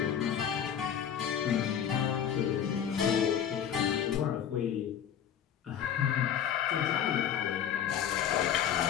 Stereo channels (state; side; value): quieter; right; 9.0 dB